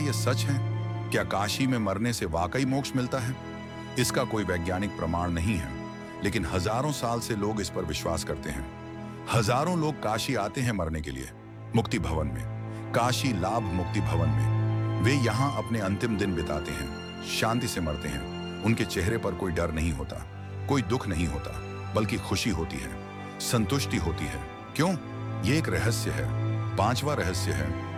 सच है? क्या काशी में मरने से वाकई मोक्ष मिलता है? इसका कोई वैज्ञानिक प्रमाण नहीं है, लेकिन हजारों साल से लोग इस पर विश्वास करते हैं। हजारों लोग काशी आते हैं मरने के लिए, मुक्ति भवन में, काशी लाभ मुक्ति भवन में। वे यहाँ अपने अंतिम दिन बिताते हैं, शांति से मरते हैं। उनके चेहरे पर कोई डर नहीं होता, कोई दुख नहीं होता, बल्कि खुशी होती है, संतुष्टि होती है। क्यों? ये एक रहस्य है। पांचवा रहस्य है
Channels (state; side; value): identical; both; correlation 1.00